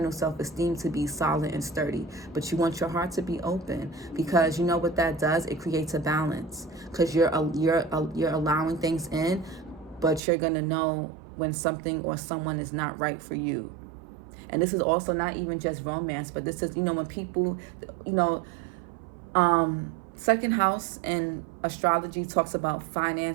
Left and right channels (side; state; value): left; drops out; at 10.2 s